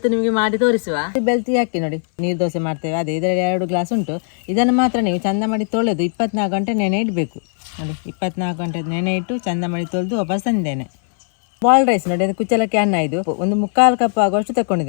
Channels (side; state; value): right; silent; 60 dB below the other